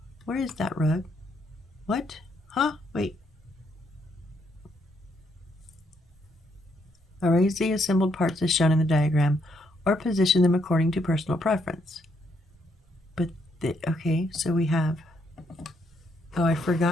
Where is that rug? What? Huh? Wait. Arrange the assembled parts as shown in the diagram, or position them according to personal preference. But, okay, so we have, oh, I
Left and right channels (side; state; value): both; normal; correlation 0.74